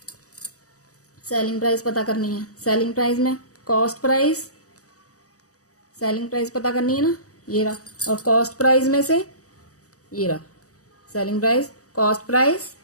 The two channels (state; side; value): late; right; 0.66 ms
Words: सेलिंग प्राइस पता करनी है, सेलिंग प्राइस में कॉस्ट प्राइस, सेलिंग प्राइस पता करनी है ना, ये रहा, और कॉस्ट प्राइस में से ये रहा selling price, cost price